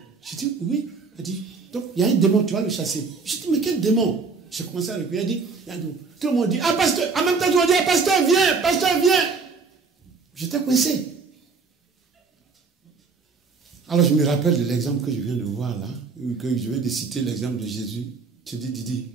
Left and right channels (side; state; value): left; quieter; 4.7 dB